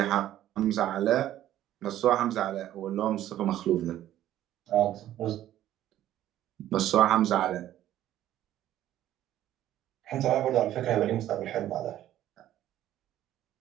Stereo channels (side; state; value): left; quieter; 12.7 dB